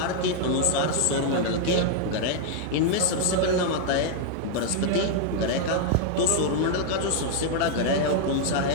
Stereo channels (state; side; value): different; both; correlation 0.00